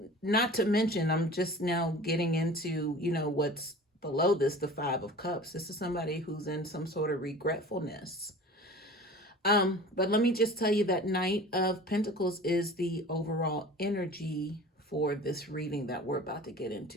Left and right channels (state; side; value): normal; both; correlation 0.40